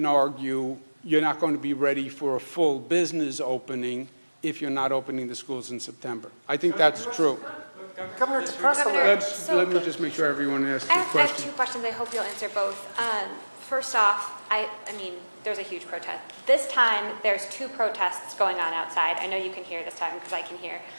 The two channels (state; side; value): inverted; both; correlation -1.00